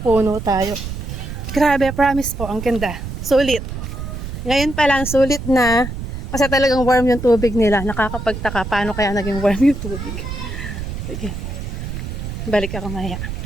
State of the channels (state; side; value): noise; right; rumble, 7 dB below the sound